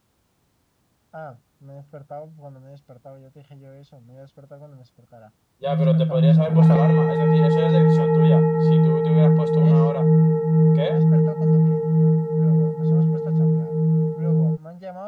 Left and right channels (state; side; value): identical; both; correlation 1.00